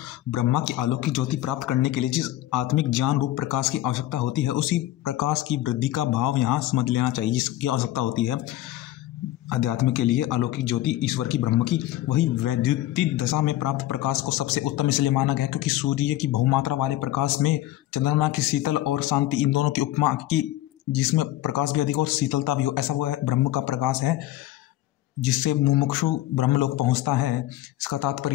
ब्रह्मा की अलौकिक ज्योति प्राप्त करने के लिए जिस आत्मिक ज्ञान रूप प्रकाश की आवश्यकता होती है, उसी प्रकाश की वृद्धि का भाव यहाँ समझ लेना चाहिए, जिसकी आवश्यकता होती है। अध्यात्म के लिए अलौकिक ज्योति ईश्वर की ब्रह्म की वही वैद्युतिक दशा में प्राप्त प्रकाश को सबसे उत्तम इसलिए माना गया क्योंकि सूर्य की बहुमात्रा वाले प्रकाश में चंद्रमा की शीतल और शांति इन दोनों की उपमा की, जिसमें प्रकाश भी अधिक और शीतलता भी हो, ऐसा वह ब्रह्म का प्रकाश है जिससे मुमुक्षु ब्रह्मलोक पहुंचता है। इसका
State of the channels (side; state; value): right; quieter; 14.9 dB